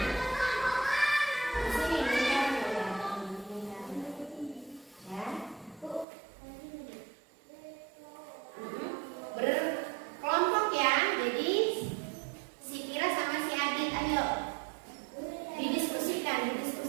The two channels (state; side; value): drops out; left; at 6.1 s